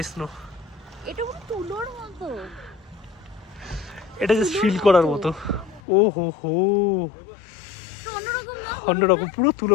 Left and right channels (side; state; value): right; drops out; at 5.8 s